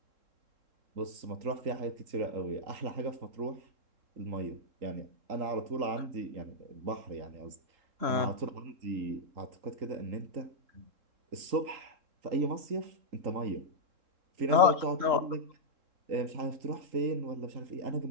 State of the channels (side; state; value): left; late; 3.7 ms